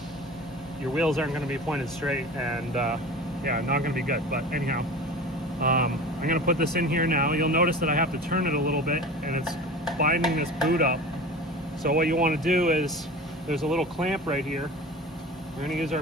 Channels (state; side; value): normal; both; correlation 0.36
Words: your wheels aren't gonna be pointed straight and yeah, not gonna be good. But anyhow, I'm gonna put this in here now. You'll notice that I have to turn it a little bit and it's binding this boot up. So what you wanna do is, there's a little clamp right here. We're gonna use